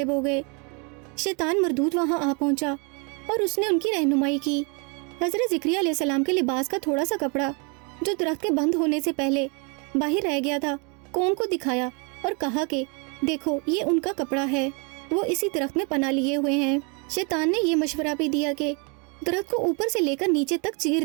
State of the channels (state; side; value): quieter; left; 33.9 dB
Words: हो गए। शैतान मरदूद वहाँ आ पहुँचा और उसने उनकी रहनुमाई की। हजरत ज़िक्रिया अलैहिस्सलाम के लिबास का थोड़ा सा कपड़ा जो दरख्त के बंद होने से पहले बाहर रह गया था, कौम को दिखाया और कहा कि देखो ये उनका कपड़ा है, वो इसी दरख्त में पनाह लिए हुए हैं। शैतान ने ये मशवरा भी दिया कि दरख्त को ऊपर से लेकर नीचे तक चीर